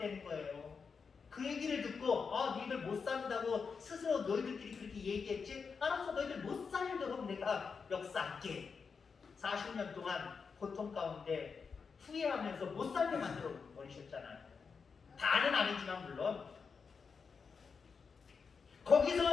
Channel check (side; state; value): right; quieter; 5.5 dB